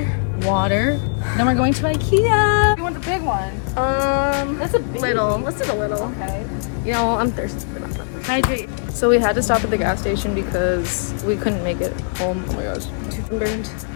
water. Then we're going to IKEA. You want the big one? It's a little. Let's do the little. Okay. You know, I'm thirsty for that. Hydrate. So we had to stop at the gas station because we couldn't make it home. Oh my god,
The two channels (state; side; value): silent; right; 59 dB below the other